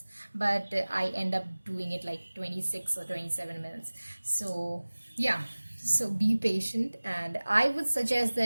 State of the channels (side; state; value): both; inverted; correlation -1.00